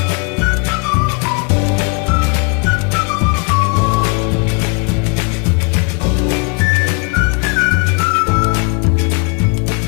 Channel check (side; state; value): right; quieter; 34.2 dB